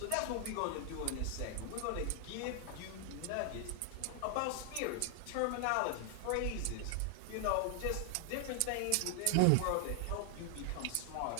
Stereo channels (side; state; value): both; different; correlation 0.00